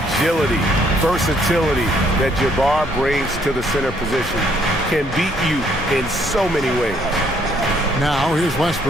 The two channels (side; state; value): both; normal; correlation 0.67